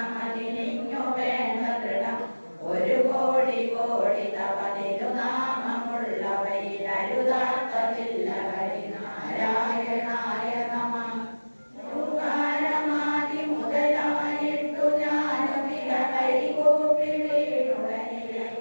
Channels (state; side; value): inverted; both; correlation -1.00